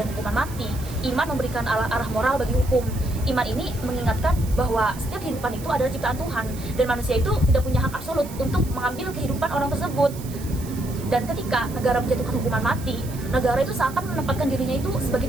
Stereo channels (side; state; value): right; noise; hiss, 16 dB below the sound